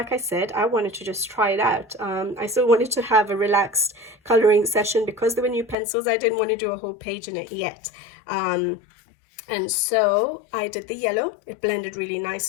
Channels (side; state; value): right; drops out; at 5.8 s